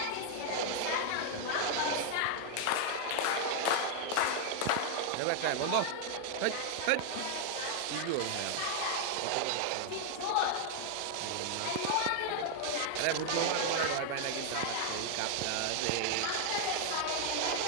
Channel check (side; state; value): both; different; correlation 0.00